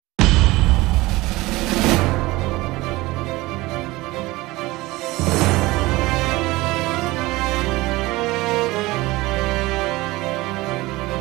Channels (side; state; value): left; quieter; 20.2 dB